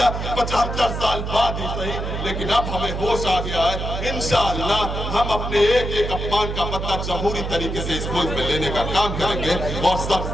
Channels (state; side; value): noise; right; hum, 4 dB below the sound